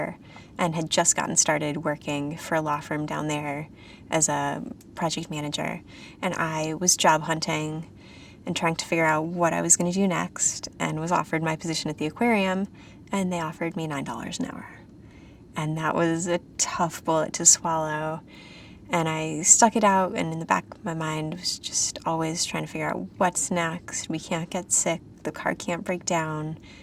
and had just gotten started working for a law firm down there as a project manager. And I was job hunting and trying to figure out what I was going to do next, and was offered my position at the aquarium, and they offered me $9 an hour. And that was a tough bullet to swallow, and I stuck it out, and in the back of my mind was just always trying to figure out what's next. We can't get sick, the car can't break down,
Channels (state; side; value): identical; both; correlation 1.00